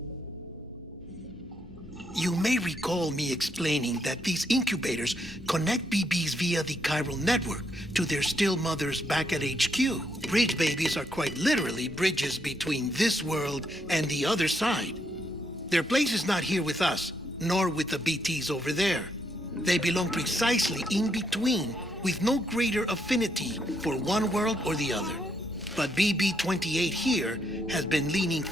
You may recall me explaining that these incubators connect BBs via the chiral network to their still mothers back at HQ. Bridge babies are quite literally bridges between this world and the other side. Their place is not here with us, nor with the BTs over there. They belong precisely in between, with no greater affinity for one world or the other. But BB-28 here has been leaning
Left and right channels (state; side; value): normal; both; correlation 0.76